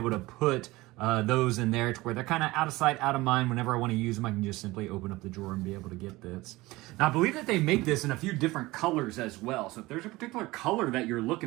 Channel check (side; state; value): left; quieter; 20.1 dB